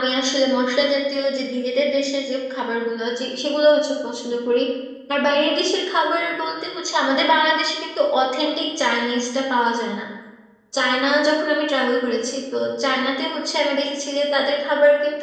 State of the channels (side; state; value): both; identical; correlation 1.00